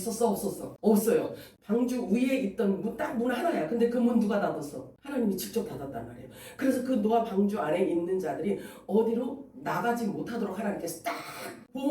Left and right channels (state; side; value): identical; both; correlation 1.00